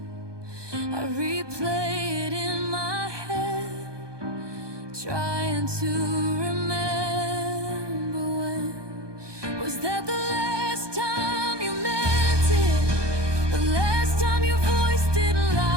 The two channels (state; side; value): late; left; 1.2 ms